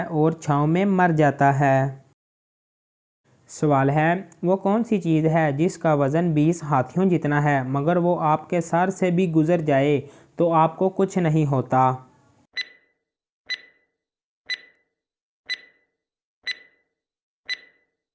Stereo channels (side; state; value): both; identical; correlation 1.00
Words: और छाँव में मर जाता है। सवाल है, वो कौन सी चीज़ है जिसका वज़न 20 हाथियों जितना है मगर वो आपके सर से भी गुज़र जाए तो आपको कुछ नहीं होता?